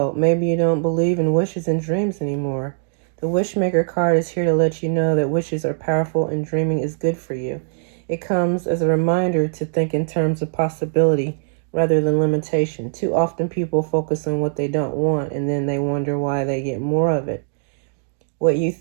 Maybe you don't believe in wishes and dreams anymore. The Wishmaker card is here to let you know that wishes are powerful and dreaming is good for you. It comes as a reminder to think in terms of possibility rather than limitation. Too often people focus on what they don't want and then they wonder why they get more of it. What you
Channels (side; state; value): left; silent; digital silence